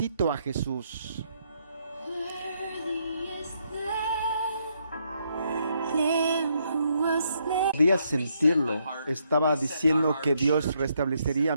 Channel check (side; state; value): both; inverted; correlation -0.75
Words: a Jesús. Podía sentirlo. Estaba diciendo que Dios restablecería